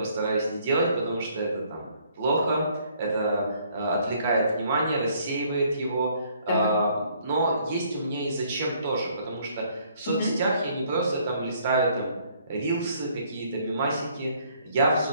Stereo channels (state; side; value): inverted; both; correlation -0.64